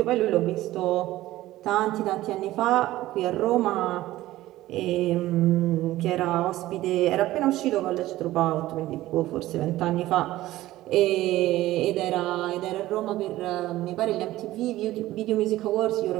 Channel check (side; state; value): left; quieter; 16.0 dB